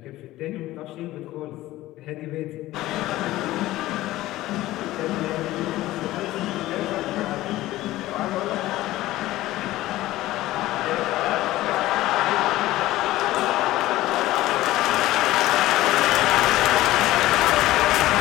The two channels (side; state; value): right; quieter; 16.4 dB